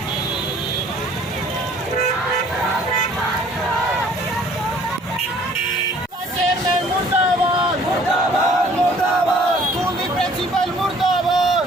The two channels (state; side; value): normal; both; correlation 0.56